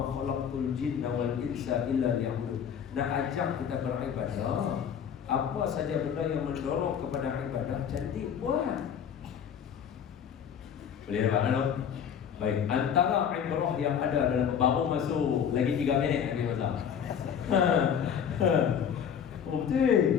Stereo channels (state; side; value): quieter; right; 8.1 dB